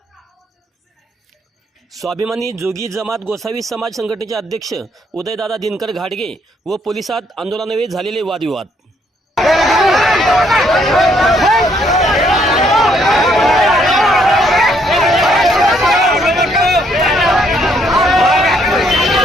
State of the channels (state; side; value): normal; both; correlation 0.69